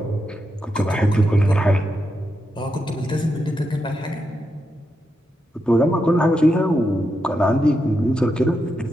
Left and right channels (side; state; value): both; normal; correlation 0.85